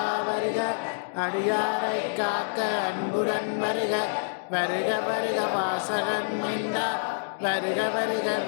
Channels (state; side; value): silent; right; digital silence